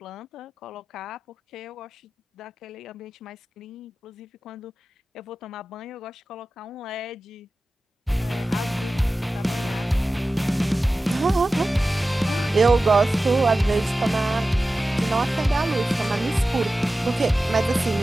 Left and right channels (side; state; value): both; normal; correlation 0.95